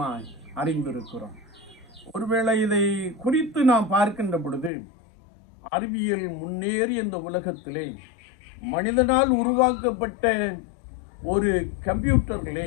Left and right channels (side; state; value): right; drops out; at 4.7 s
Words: அறிந்திருக்கிறோம். ஒருவேளை இதை குறித்து நாம் பார்க்கின்ற பொழுது அறிவியல் முன்னேறி இந்த உலகத்திலே மனிதனால் உருவாக்கப்பட்ட ஒரு கம்ப்யூட்டர்களே